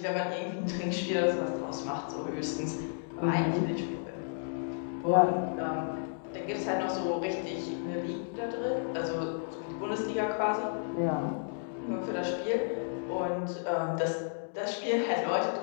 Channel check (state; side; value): silent; right; digital silence